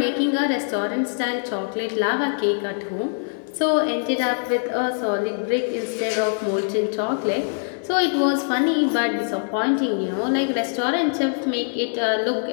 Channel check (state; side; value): silent; right; 63 dB below the other